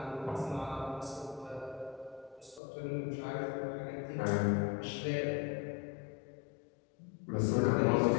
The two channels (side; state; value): right; drops out; at 2.6 s